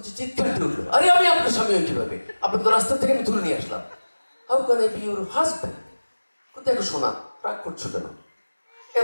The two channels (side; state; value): both; inverted; correlation -1.00